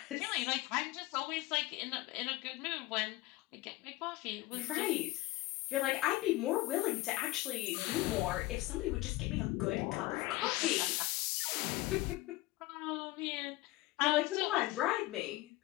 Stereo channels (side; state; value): right; quieter; 19.1 dB